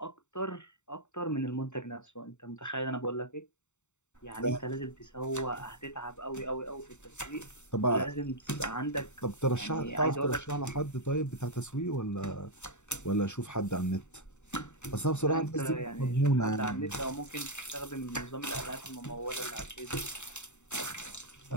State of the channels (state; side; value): late; right; 0.84 ms